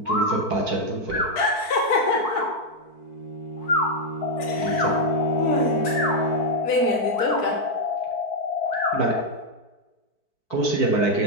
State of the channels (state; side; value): late; right; 4.5 ms